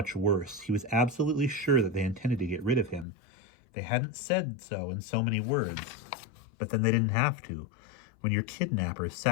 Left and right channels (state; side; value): drops out; right; at 3.1 s